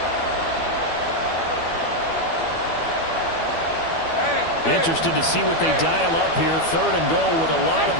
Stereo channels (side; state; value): right; late; 12 ms